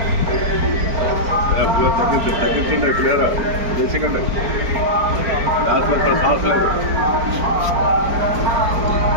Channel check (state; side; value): late; left; 4.5 ms